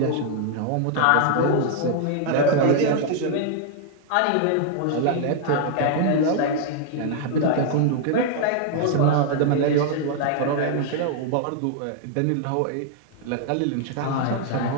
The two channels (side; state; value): both; different; correlation 0.00